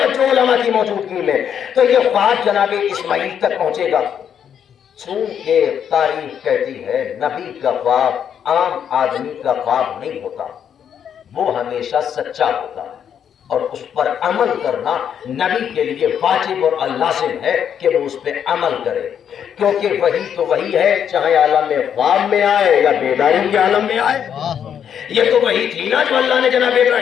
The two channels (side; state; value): right; quieter; 8.5 dB